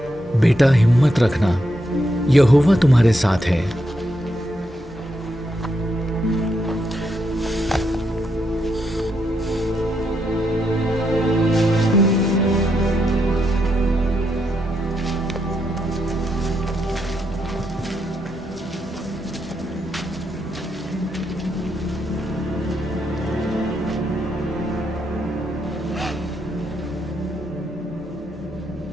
बेटा हिम्मत रखना, यहोवा तुम्हारे साथ है।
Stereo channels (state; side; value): normal; both; correlation 0.80